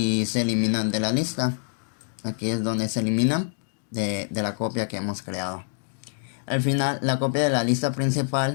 se eliminan de la lista. Aquí es donde se eliminan de la copia que hemos creado. Al final, la copia de la lista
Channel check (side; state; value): right; silent; digital silence